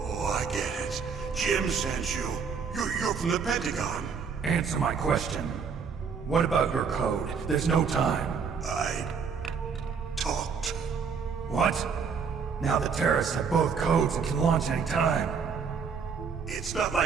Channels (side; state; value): left; quieter; 6.1 dB